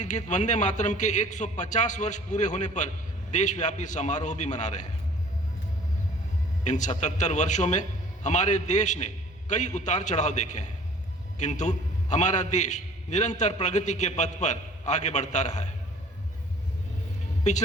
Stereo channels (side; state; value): both; normal; correlation 0.50